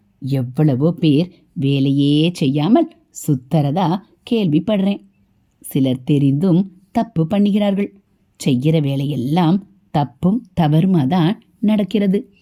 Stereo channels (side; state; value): both; identical; correlation 1.00